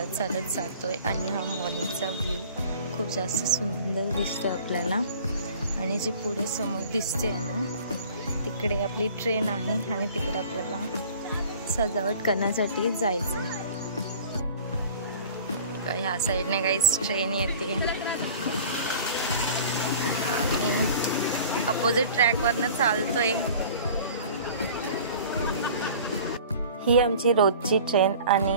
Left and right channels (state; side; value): inverted; both; correlation -0.44